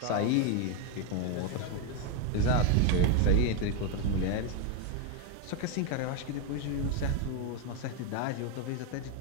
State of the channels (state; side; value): different; both; correlation 0.01